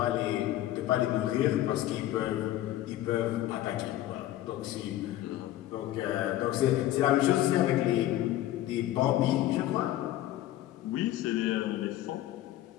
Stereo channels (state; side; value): quieter; right; 14.0 dB